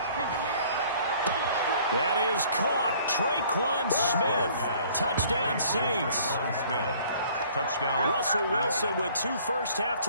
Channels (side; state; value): both; inverted; correlation -0.55